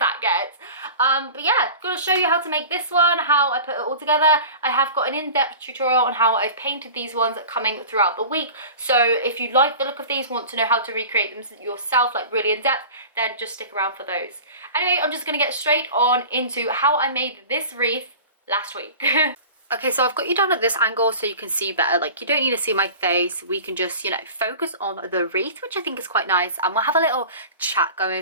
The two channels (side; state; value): both; inverted; correlation -0.38